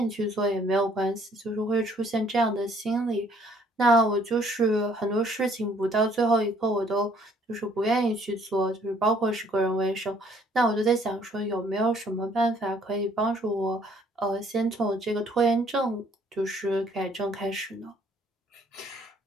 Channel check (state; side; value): normal; both; correlation 0.62